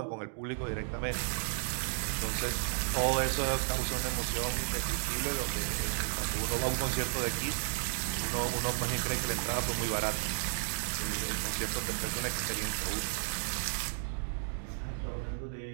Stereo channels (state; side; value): silent; left; digital silence